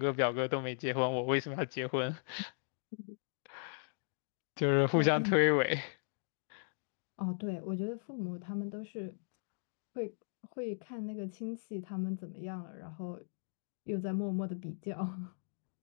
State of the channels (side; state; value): right; silent; digital silence